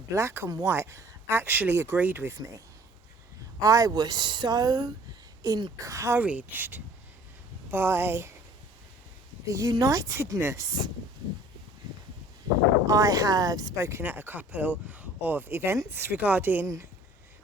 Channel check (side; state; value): both; normal; correlation 0.51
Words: black and white, actually agreed with me. I was so encouraged by the unitedness. I have spoken at a couple of events regarding